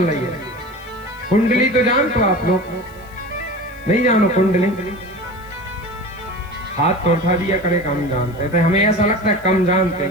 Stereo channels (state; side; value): noise; left; hiss, 27 dB below the sound